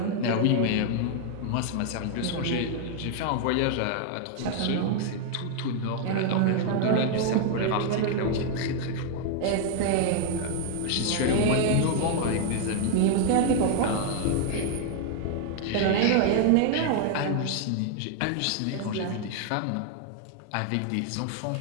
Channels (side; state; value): both; different; correlation 0.00